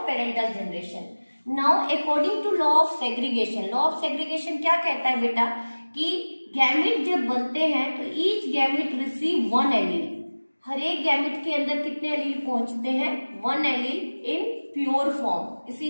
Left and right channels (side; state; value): both; inverted; correlation -1.00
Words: parental generation. Now according to law of segregation, law of segregation क्या कहता है बेटा कि गैमेट जब बनते हैं तो ईच गैमेट रिसीव 1 एलील. हर एक गैमेट के अंदर कितने एलील पहुंचते हैं, 1 एलील इन प्योर फॉर्म.